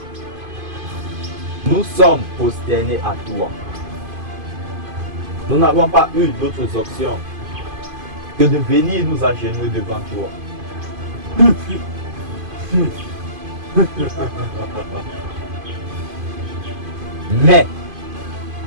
Nous sommes prosternés à toi. Nous n'avons pas eu d'autres options que de venir nous agenouiller devant toi. Mais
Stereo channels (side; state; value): left; late; 2.5 ms